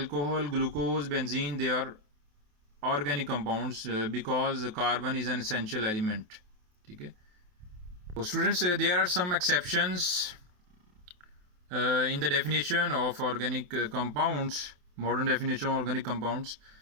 glucose, benzene, they are organic compounds because carbon is an essential element, ठीक है। तो students there are some exceptions in the definition of organic compounds, modern definition of organic compounds।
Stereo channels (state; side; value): late; left; 28 ms